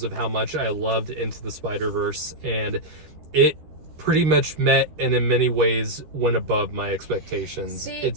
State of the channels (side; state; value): left; late; 13 ms